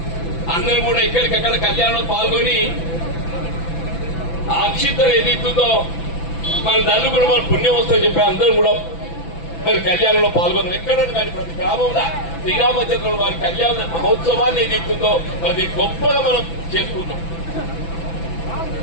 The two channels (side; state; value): right; late; 6.0 ms